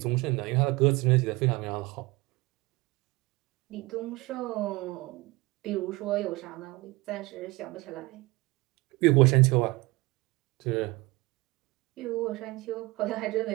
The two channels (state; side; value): quieter; left; 22.4 dB